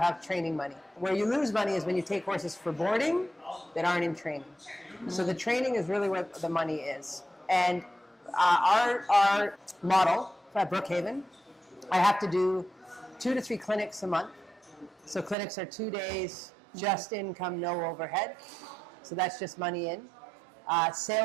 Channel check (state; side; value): drops out; left; at 15.4 s